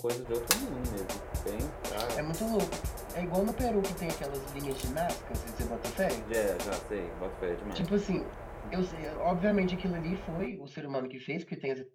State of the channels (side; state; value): both; identical; correlation 1.00